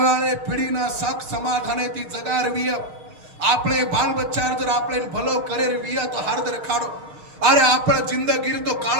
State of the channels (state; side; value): late; left; 6.5 ms